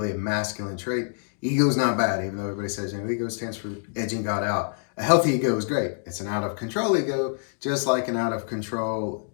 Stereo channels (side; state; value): right; silent; digital silence